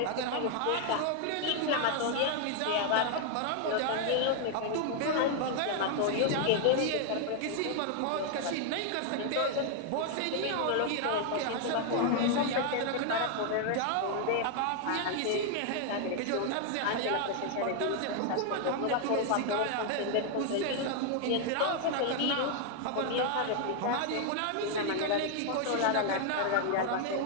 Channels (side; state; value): both; different; correlation 0.00